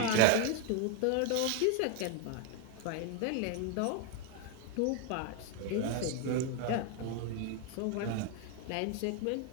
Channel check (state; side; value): different; both; correlation 0.01